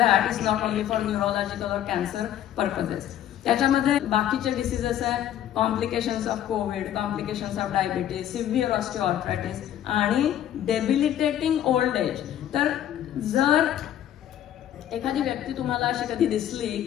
is not only for neurological और कॅन्सर पर्पजेस. त्याच्यामध्ये बाकीचे डिसीजेस आहे, complications of Covid, complications of diabetes, severe osteoarthritis आणि डेबिलिटेटिंग ओल्ड एज. तर जर एखादी व्यक्ती तुम्हाला अशी कधी दिसली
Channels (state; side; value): quieter; right; 11.2 dB